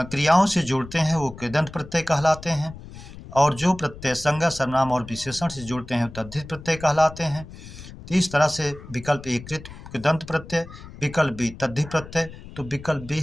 से जुड़ते हैं वो कृदंत प्रत्यय कहलाते हैं, और जो प्रत्यय संज्ञा सर्वनाम और विशेषण से जुड़ते हैं तद्धित प्रत्यय कहलाते हैं। तो इस तरह से विकल्प ए कृदंत प्रत्यय, विकल्प बी तद्धित प्रत्यय। तो विकल्प बी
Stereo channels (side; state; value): left; noise; rumble, 15 dB below the sound